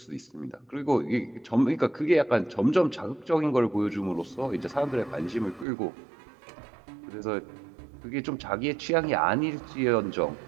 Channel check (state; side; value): drops out; left; at 5.7 s